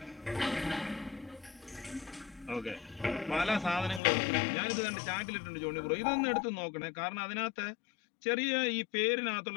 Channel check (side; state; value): right; drops out; at 4.0 s